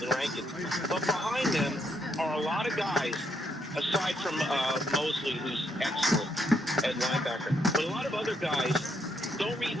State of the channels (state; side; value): normal; both; correlation 0.75